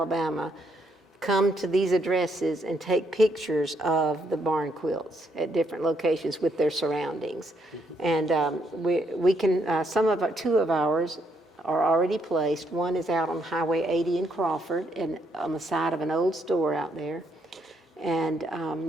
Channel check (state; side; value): normal; both; correlation 0.74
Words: come to these addresses and take pictures of the barn quilts at different locations with their surroundings. And we can, two of ours are already placed. One is out on Highway 80 in Crawford, and on the side of an old store out there. And